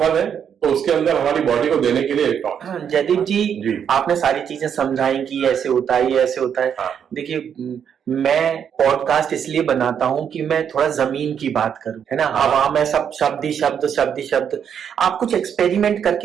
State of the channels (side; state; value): left; quieter; 8.1 dB